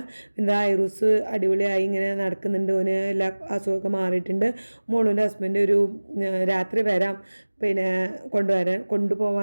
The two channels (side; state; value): both; inverted; correlation -1.00